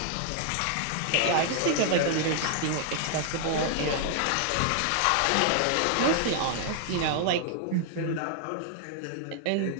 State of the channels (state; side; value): different; both; correlation 0.00